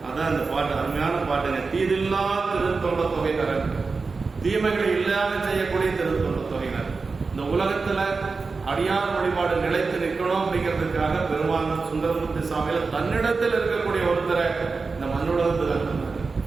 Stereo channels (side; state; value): left; quieter; 4.3 dB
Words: அதான் இந்த பாட்டு, அருமையான பாட்டுங்க. தீதில்லா திருத்தொண்ட தொகையினர், தீமைகளை இல்லாம செய்யக்கூடிய திருத்தொண்ட தொகையினர். இந்த உலகத்துல அடியார் வழிபாடு நிலைத்து நிற்கணும் அப்படிங்கிறதுக்காக பெருமான் சுந்தரமூர்த்தி சாமியில தன்னிடத்தில் இருக்கக்கூடிய ஒருத்தரை இந்த மண்ணுலகத்துல